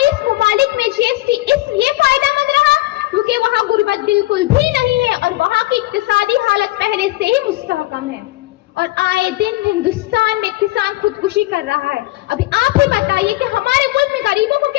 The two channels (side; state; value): right; quieter; 19.0 dB